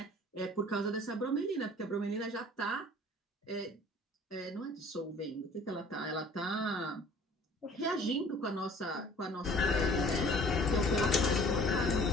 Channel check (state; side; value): normal; both; correlation 0.51